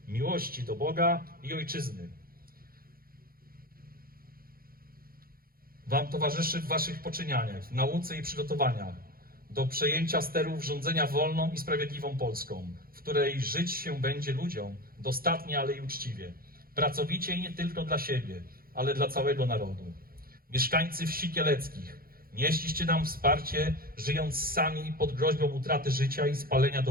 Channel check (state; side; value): late; left; 0.43 ms